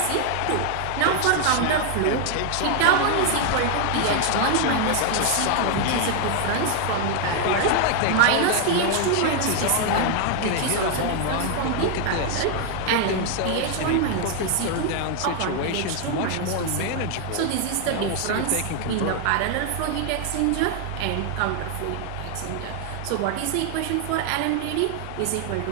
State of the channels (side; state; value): both; different; correlation 0.00